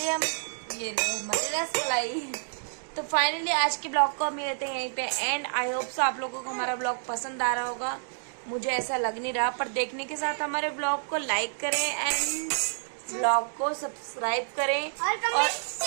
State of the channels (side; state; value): left; silent; digital silence